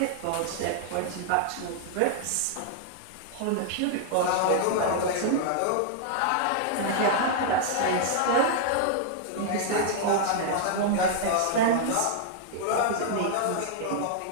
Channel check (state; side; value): different; both; correlation -0.01